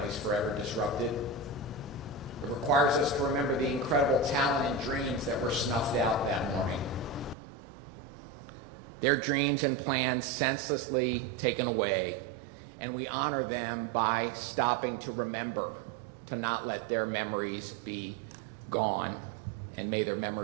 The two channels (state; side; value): drops out; left; at 7.4 s